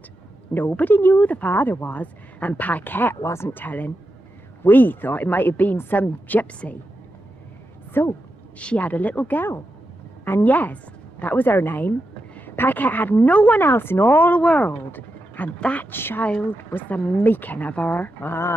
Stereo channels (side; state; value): both; normal; correlation 0.88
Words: Nobody knew who the father was, and Pickett wasn't telling. We thought it might have been some gypsy. So, she had a little girl. And yes, that was her name. Pickett had no one else in all the world. And that child was the making of her.